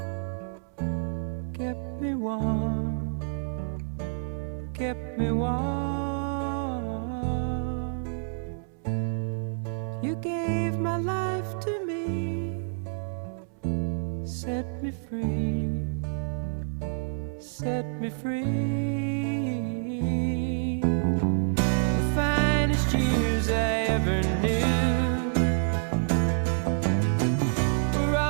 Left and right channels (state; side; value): silent; left; 59 dB below the other